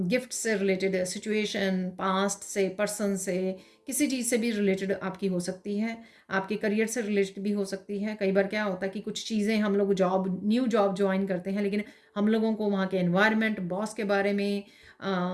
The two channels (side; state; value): both; identical; correlation 1.00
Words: गिफ्ट से रिलेटेड, सिचुएशन पास्ट से, पर्सन से, किसी चीज़ से भी रिलेटेड आपकी हो सकती है, आपके करियर से रिलेटेड भी हो सकती है। कई बार क्या होता है कि कुछ चीज़ें हम लोग न्यू जॉब ज्वाइन करते हैं, लेकिन हम लोगों को वहाँ के एनवायरनमेंट, बॉस के बारे में,